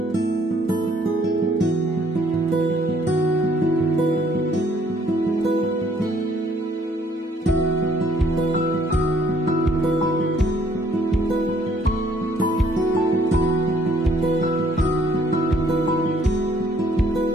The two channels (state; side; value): normal; both; correlation 0.64